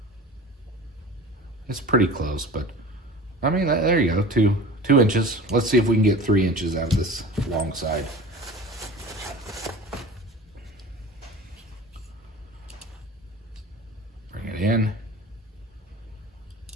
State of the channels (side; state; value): both; normal; correlation 0.38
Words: it's pretty close, but I mean, there you go, 2 inches. Let's see if we can get 3 inches out of this long side. Bring it in.